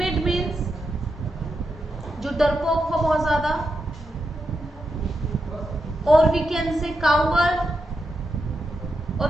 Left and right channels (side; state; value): both; normal; correlation 0.86